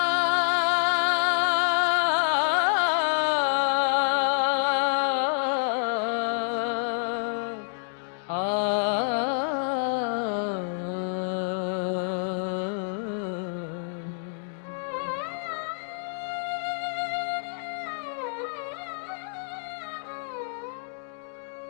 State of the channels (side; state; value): right; silent; digital silence